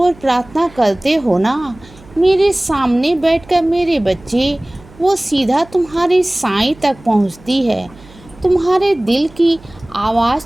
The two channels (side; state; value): right; noise; hum, 24 dB below the sound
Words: प्रार्थना करते हो ना, मेरे सामने बैठकर मेरे बच्चे, वो सीधा तुम्हारे साईं तक पहुंचती है। तुम्हारे दिल की आवाज़